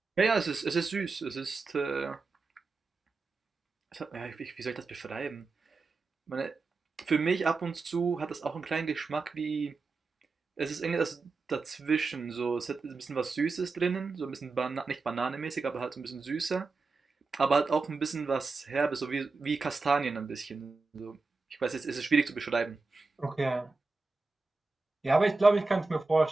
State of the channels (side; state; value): left; quieter; 3.9 dB